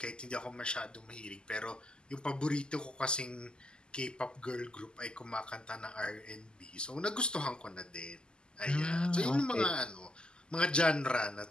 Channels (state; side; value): late; right; 0.048 ms